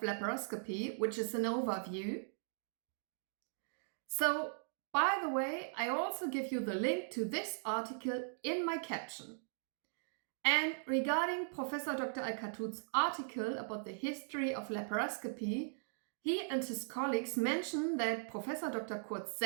which is an overview. So, by the way, I also give you the link to this article in my caption. And regarding Professor Dr. Alkatout's article about the history of laparoscopy, he and his colleagues mention that Professor Dr. Kurt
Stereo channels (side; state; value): left; silent; digital silence